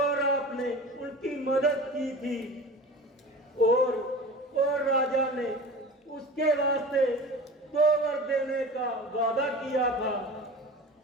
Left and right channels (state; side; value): normal; both; correlation 0.35